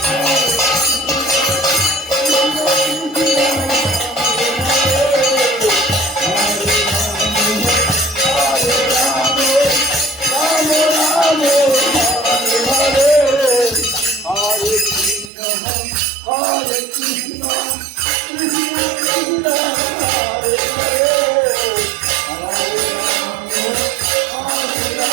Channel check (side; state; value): left; drops out; at 15.3 s